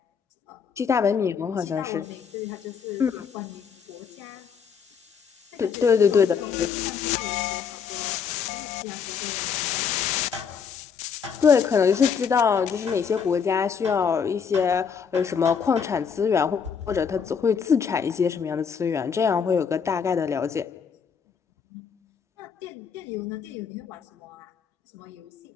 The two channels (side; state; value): right; quieter; 6.6 dB